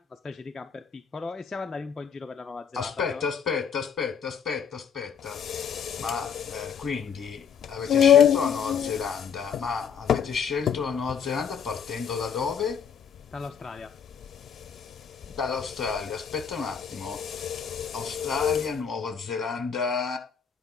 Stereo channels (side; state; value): right; quieter; 7.2 dB